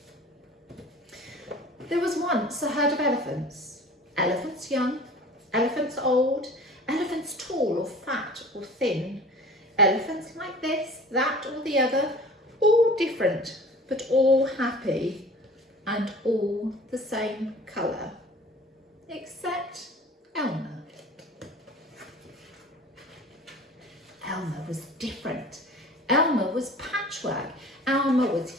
There was once a herd of elephants. Elephants young, elephants old, elephants tall or fat or thin, elephants like this, that or the other, all different, but all happy and all the same colour, except Elmer. Elmer was different. Elmer was patchwork. Elmer was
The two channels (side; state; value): both; normal; correlation 0.43